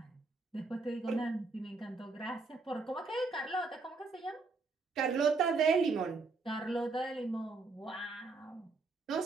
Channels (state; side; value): quieter; left; 3.9 dB